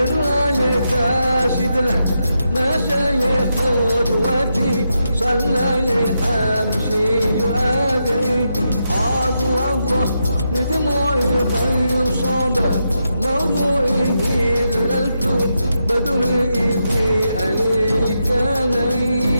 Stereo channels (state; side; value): inverted; both; correlation -0.84